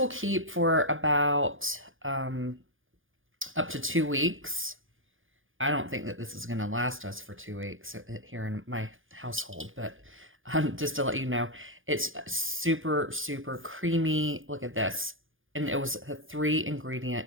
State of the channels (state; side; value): late; left; 0.58 ms